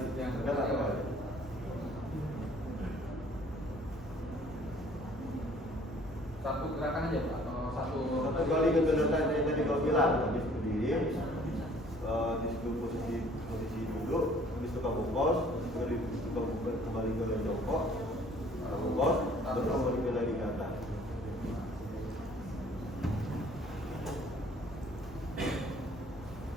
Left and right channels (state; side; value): normal; both; correlation 0.56